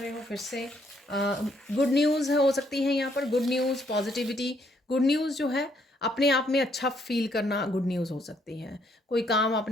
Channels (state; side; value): normal; both; correlation 0.70